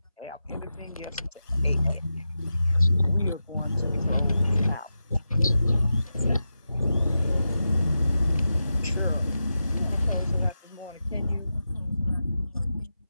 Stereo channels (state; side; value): inverted; both; correlation -0.90